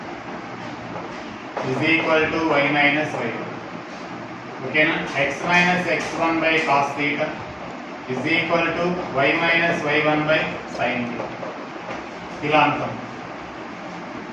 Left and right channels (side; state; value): both; identical; correlation 1.00